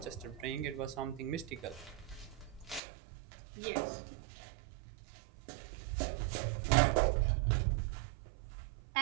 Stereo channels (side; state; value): left; drops out; at 2.8 s